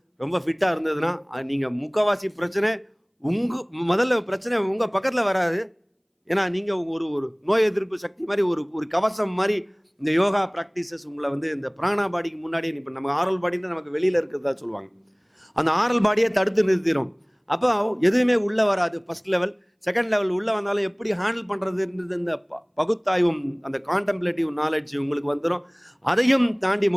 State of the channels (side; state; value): both; identical; correlation 1.00